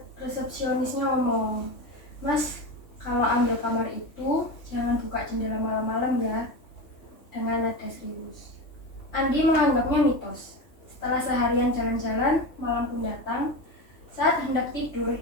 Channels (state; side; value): late; right; 3.2 ms